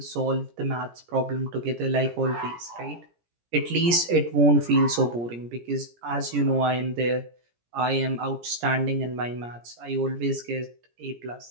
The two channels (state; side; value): late; left; 17 ms